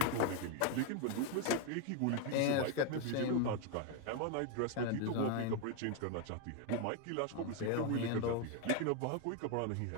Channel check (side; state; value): both; different; correlation 0.01